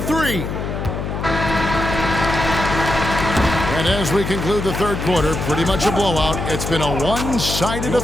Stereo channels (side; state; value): left; noise; hum, 4 dB below the sound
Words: And as we conclude the third quarter, pretty much a blowout. It's been a one-sided